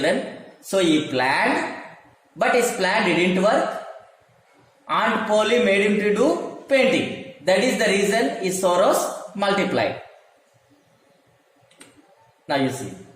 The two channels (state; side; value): identical; both; correlation 1.00